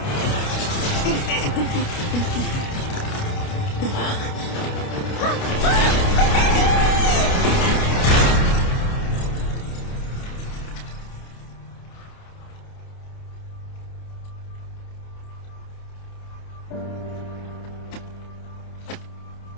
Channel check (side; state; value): right; late; 29 ms